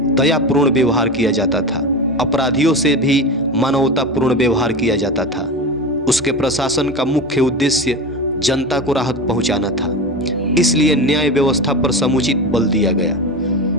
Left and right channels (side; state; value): both; normal; correlation 0.24